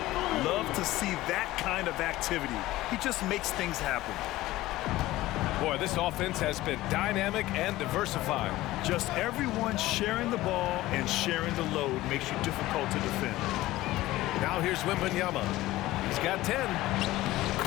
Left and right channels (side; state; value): right; quieter; 17.0 dB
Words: Love to see that kind of activity. He just makes things happen. Boy, this offense has been dynamic and diversified. Just everyone sharing the ball and sharing the load makes you difficult to defend. Now here's Wembanyama. He's got 10.